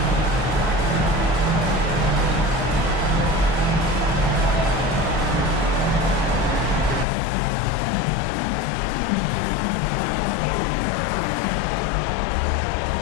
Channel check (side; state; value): right; drops out; at 7.1 s